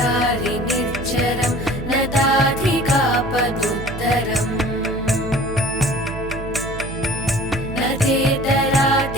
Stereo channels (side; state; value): right; noise; hum, 10 dB below the sound